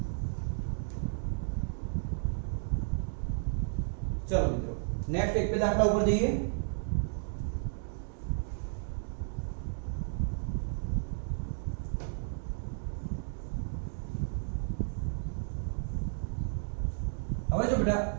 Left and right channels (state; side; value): silent; left; digital silence